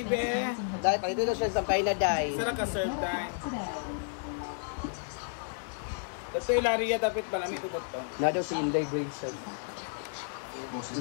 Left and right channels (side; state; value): right; silent; digital silence